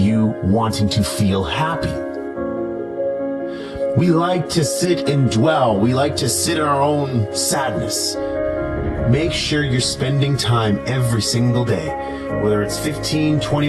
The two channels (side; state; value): both; identical; correlation 1.00